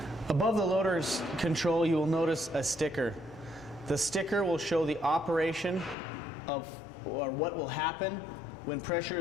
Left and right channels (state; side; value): drops out; right; at 6.0 s